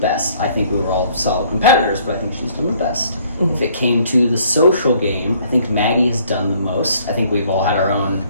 I think we were all solid competitors, but I think she's done the best. If it came to the social game, I think Maggie has done the most. I think we've all had our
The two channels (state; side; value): inverted; both; correlation -0.61